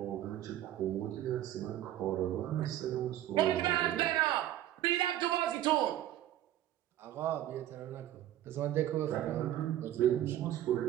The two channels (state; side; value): quieter; left; 12.9 dB